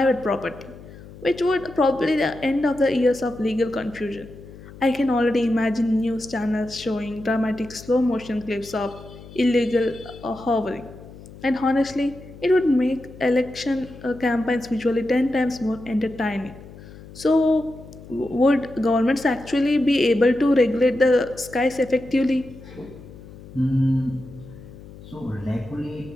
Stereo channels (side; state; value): left; noise; hum, 18 dB below the sound